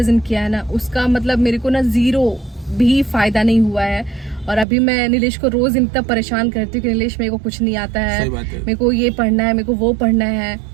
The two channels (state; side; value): drops out; left; at 4.7 s